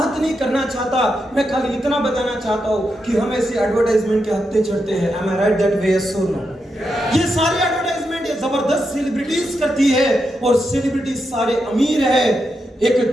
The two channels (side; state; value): both; normal; correlation 0.85